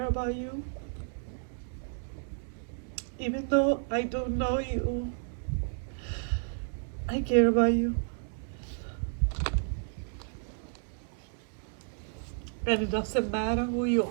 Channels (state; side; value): silent; left; 57 dB below the other